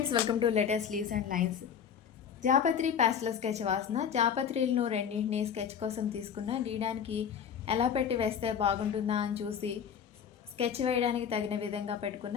welcome to latest leaves and lines. జాపత్రి pastel sketch వాసన. జాపత్రిలను రెండింటిని స్కెచ్ కోసం తీసుకున్న. గీయడానికి ఎలా పెట్టి వేస్తే బాగుంటుందా అని చూసి స్కెచ్ వేయడానికి తగిన విధంగా పెట్టుకున్న.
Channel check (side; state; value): right; quieter; 7.8 dB